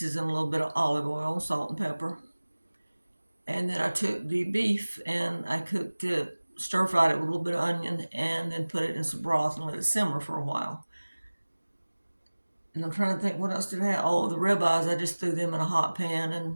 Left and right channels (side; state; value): both; inverted; correlation -1.00